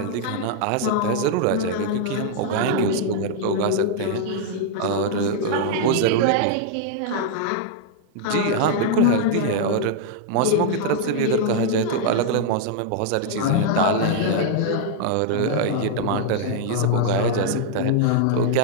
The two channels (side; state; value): both; different; correlation -0.01